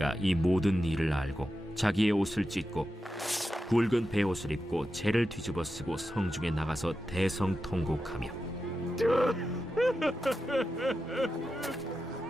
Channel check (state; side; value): normal; both; correlation 0.90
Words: 이 모든 일을 알고 자기의 옷을 찢고 굵은 베옷을 입고 재를 뒤집어 쓰고 성중에 나가서 대성통곡하며